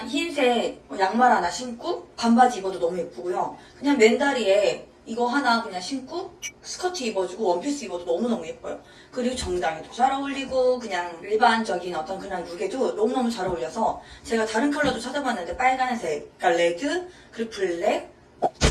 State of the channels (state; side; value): identical; both; correlation 1.00